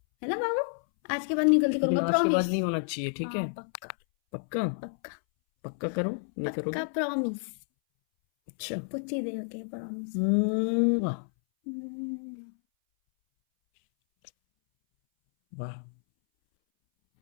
है ना बाबू? आज के बाद नहीं गलती लेकिन करूंगा, आज के बाद प्रॉमिस। नहीं होना चाहिए, ठीक है? हाँ पक्का। पक्का? पक्का। पक्का करो, नहीं पक्का करोगे? प्रॉमिस। अच्छा। पूछी दे ओके प्रॉमिस। वाह। वाह।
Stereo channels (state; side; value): silent; right; 58 dB below the other